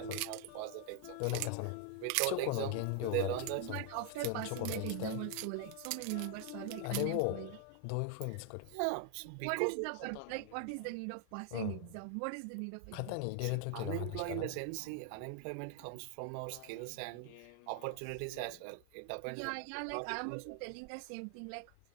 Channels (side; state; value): both; different; correlation 0.00